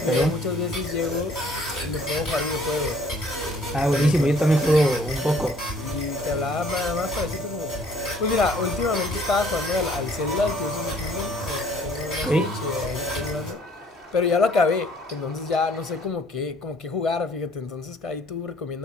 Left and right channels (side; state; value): both; normal; correlation 0.59